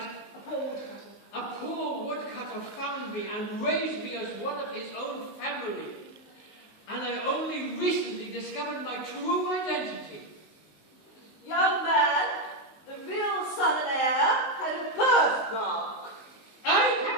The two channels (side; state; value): right; late; 19 ms